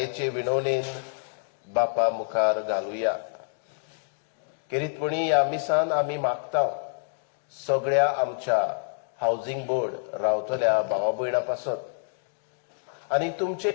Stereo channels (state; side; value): silent; right; digital silence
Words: विनवणेन बापा मुखार घालुया. किरीतपणी ह्या मिसान आमी मागता सगळ्या आमच्या हाऊसिंग बोर्ड रावतल्या भावा भयणां पासत आनी तुमचे